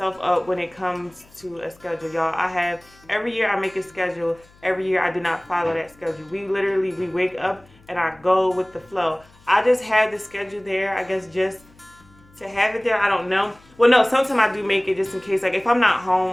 up when it comes to a schedule, y'all. Every year I make a schedule. Every year I do not follow that schedule. We wake up and I go with the flow. I just have the schedule there, I guess, just to have it there. I don't know. Well, no, sometimes I do make it just in case. Like if I'm not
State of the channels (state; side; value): noise; left; hum, 28 dB below the sound